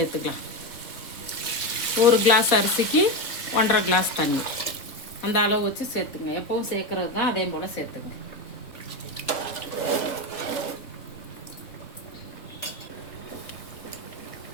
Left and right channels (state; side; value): late; right; 3.6 ms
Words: 1 கிளாஸ் அரிசிக்கு 1.5 கிளாஸ் தண்ணி, அந்த அளவு வச்சு சேர்த்துங்க. எப்பவும் சேர்க்கறது தான், அதே போல் சேர்த்துங்க.